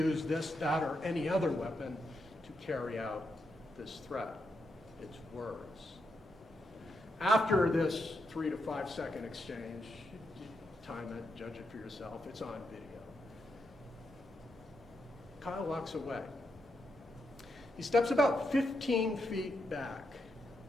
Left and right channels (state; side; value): normal; both; correlation 0.83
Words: this, that, or any other weapon to carry out this threat. It's words. After this 3 to 5 second exchange, time it, judge it for yourself, it's on video. Kyle walks away. He steps about 15 feet back.